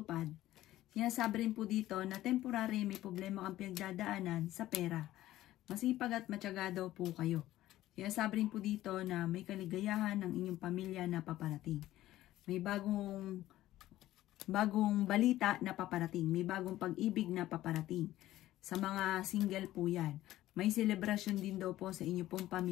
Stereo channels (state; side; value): quieter; right; 14.8 dB